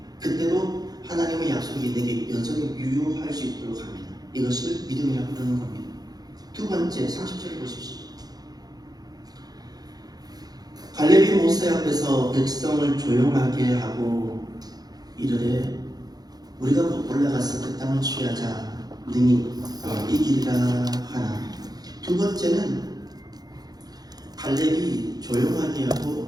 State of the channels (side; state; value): left; late; 0.19 ms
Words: 그때도 하나님의 약속이 내게 여전히 유효할 수 있도록 합니다. 이것을 믿음이라고 부르는 겁니다. 두 번째, 30절을 보십시오. 갈렙이 모세 앞에서 백성을 조용하게 하고 이르되 우리가 올라가서 그 땅을 취하자 능히 이기리라 하나. 두 번째는 갈렙이 조용하게 하고